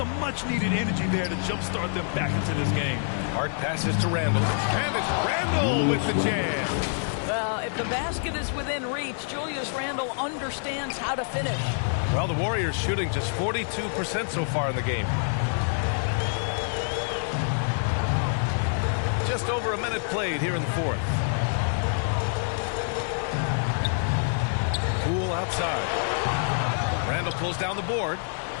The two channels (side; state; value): right; silent; 60 dB below the other